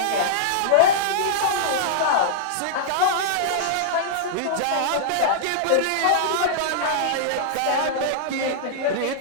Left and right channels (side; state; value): both; different; correlation -0.02